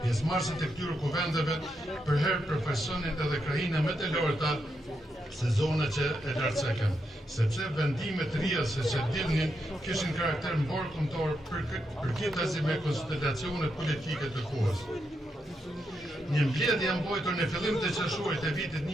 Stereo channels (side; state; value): both; normal; correlation 0.83